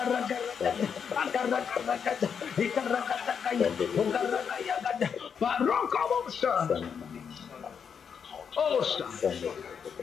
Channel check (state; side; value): quieter; right; 7.0 dB